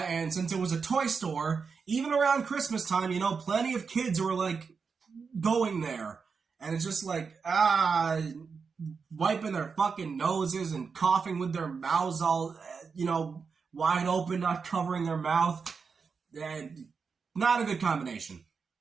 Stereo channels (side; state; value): left; quieter; 5.4 dB